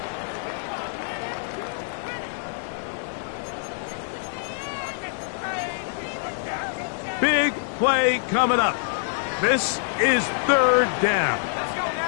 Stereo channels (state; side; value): silent; right; digital silence